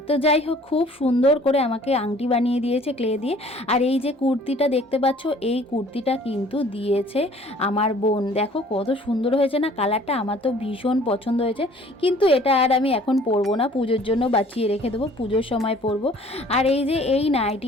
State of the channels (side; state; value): both; normal; correlation 0.53